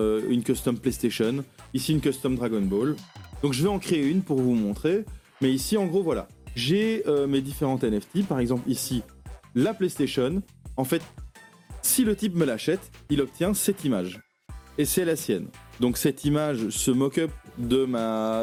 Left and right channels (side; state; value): both; identical; correlation 1.00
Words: custom PlayStation. Ici, une custom Dragon Ball. Donc, je vais en créer une pour vous montrer. Mais ici, en gros, voilà. J'ai mes différentes NFT. Par exemple, ici, la PlayStation. En fait, si le type me l'achète, il obtient cette image. Et c'est la sienne. Donc, cette image, ce mock-up